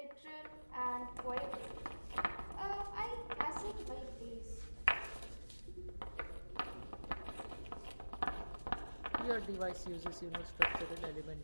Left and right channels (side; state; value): both; inverted; correlation -1.00